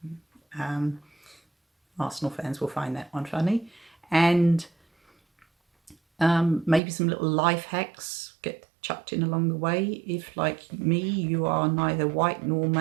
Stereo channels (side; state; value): left; drops out; at 6.8 s